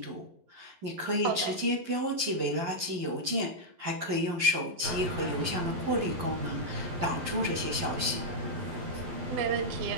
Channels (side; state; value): left; late; 11 ms